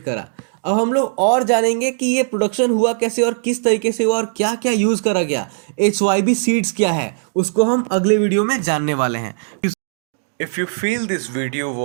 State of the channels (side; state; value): left; silent; digital silence